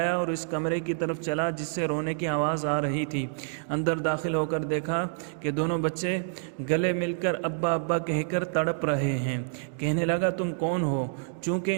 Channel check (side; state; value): left; silent; digital silence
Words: اور اس کمرے کی طرف چلا جس سے رونے کی آواز آ رہی تھی۔ اندر داخل ہو کر دیکھا کہ دونوں بچے گلے مل کر ابا ابا کہہ کر تڑپ رہے ہیں۔ کہنے لگا، تم کون ہو؟ چونکہ